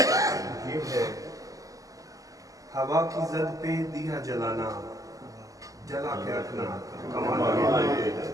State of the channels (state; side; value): late; left; 0.17 ms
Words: یہ ہے. ہوا کی زد پہ دیا جلانا جلا کے رکھنا کمال یہ ہے.